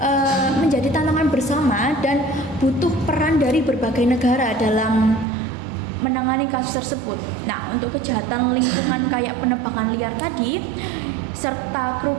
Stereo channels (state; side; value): drops out; left; at 5.2 s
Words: menjadi tantangan bersama dan butuh peran dari berbagai negara dalam menangani kasus tersebut. Nah, untuk kejahatan lingkungan kayak penebangan liar tadi serta